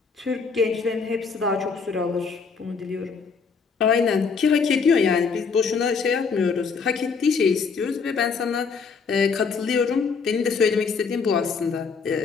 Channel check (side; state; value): right; quieter; 5.3 dB